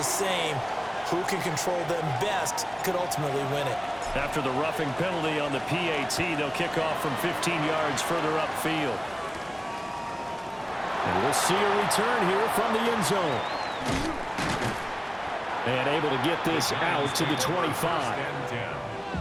same. Who can control them best could ultimately win it. After the roughing penalty on the PAT, they'll kick off from 15 yards further upfield. And we'll see a return here from the end zone. And able to get this out to the 25.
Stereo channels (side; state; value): both; identical; correlation 1.00